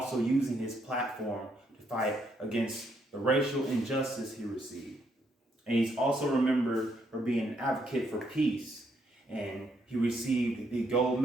using his platform to fight against the racial injustice he received. And he's also remembered for being an advocate for peace, and he received the Gold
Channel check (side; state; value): both; normal; correlation 0.74